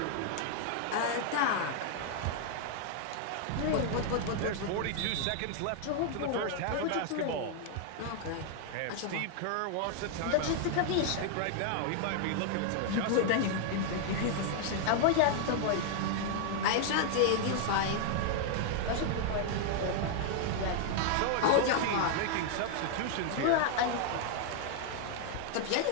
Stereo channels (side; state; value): both; different; correlation 0.00